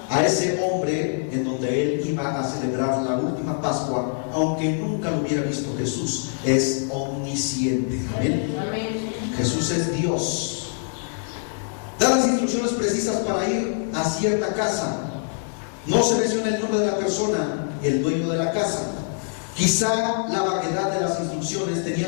a ese hombre en donde él iba a celebrar la última Pascua, aunque nunca lo hubiera visto. Jesús es omnisciente. Amén. Jesús es Dios. Da las instrucciones precisas para ir a cierta casa. No se menciona el nombre de la persona y el dueño de la casa. Quizá la vaguedad de las instrucciones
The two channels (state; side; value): silent; right; digital silence